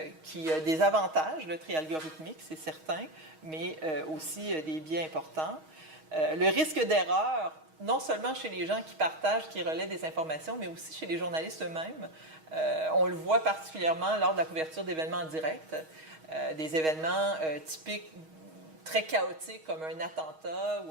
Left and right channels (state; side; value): late; left; 6.3 ms